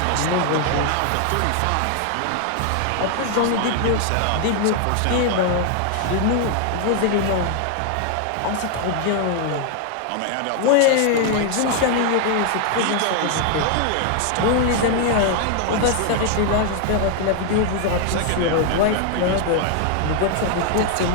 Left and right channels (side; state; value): both; different; correlation 0.00